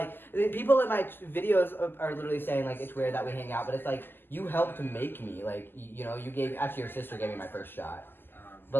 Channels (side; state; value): right; late; 0.097 ms